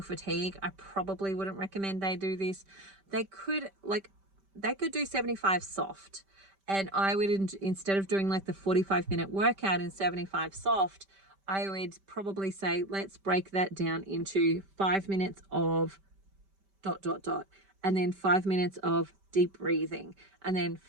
fatigue. I probably wouldn't recommend they do this. They could do 75 soft. And I would, instead of doing like the 45-minute workout in 75 soft, I would probably say, let's break that down into 5 minutes of ... and then 5 minutes of deep breathing, and then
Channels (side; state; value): left; late; 5.1 ms